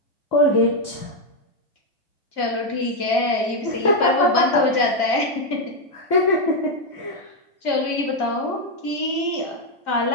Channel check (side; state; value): right; late; 2.3 ms